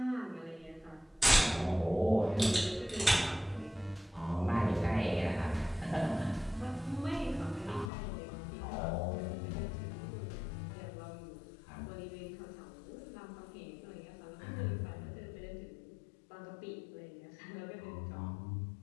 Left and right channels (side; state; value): right; drops out; at 7.9 s